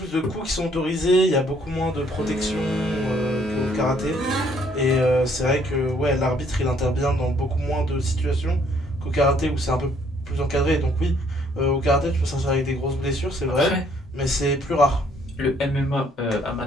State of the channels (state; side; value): normal; both; correlation 0.64